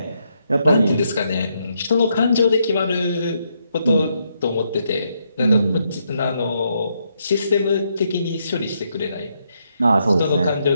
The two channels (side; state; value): both; inverted; correlation -0.78